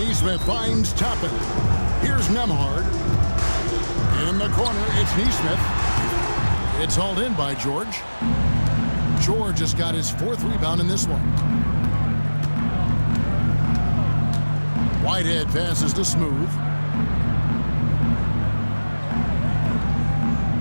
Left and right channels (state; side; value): inverted; both; correlation -1.00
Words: finds Toppin. Here's Nembhard. In the corner, it's Neesmith. It's hauled in by George. George has got his fourth rebound in this one. Whitehead passes to Smooth.